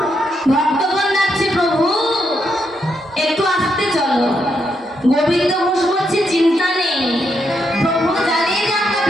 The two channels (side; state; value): both; normal; correlation 0.80